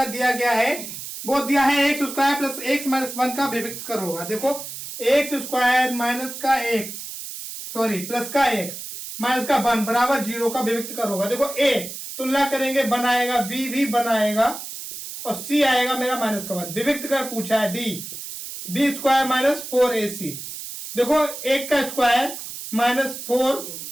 दिया गया है वो दिया है x square plus x minus 1 का विभक्त कर होगा। देखो एक्स स्क्वायर माइनस का एक्स प्लस का एक्स माइनस का 1 बराबर 0 का विभक्त कर होगा। देखो ए तुलना करेंगे बनाएगा बी भी बनाएगा और सी आएगा मेरा माइनस का 1। विभक्त कर पूछा है D B square minus 4ac। देखो एक का स्क्वायर माइनस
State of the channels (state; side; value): noise; right; hiss, 9 dB below the sound